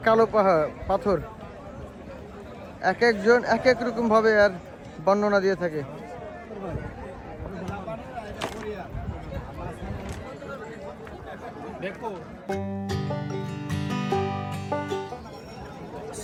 কালো পাথর, এক একজন এক এক রকম ভাবে আর বর্ণনা দিয়ে থাকে।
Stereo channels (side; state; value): both; identical; correlation 1.00